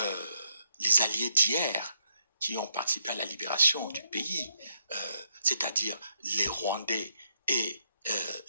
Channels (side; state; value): both; inverted; correlation -0.78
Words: les alliés d'hier qui ont participé à la libération du pays, c'est-à-dire les Rwandais et